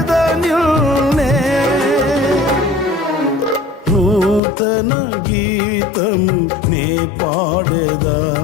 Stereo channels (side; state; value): right; drops out; at 4.4 s